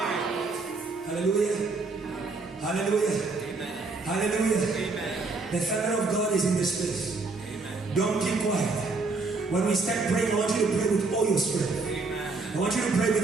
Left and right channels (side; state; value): left; quieter; 3.8 dB